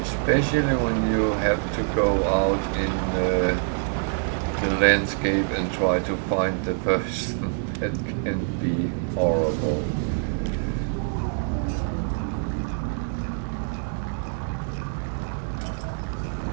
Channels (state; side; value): silent; left; 57 dB below the other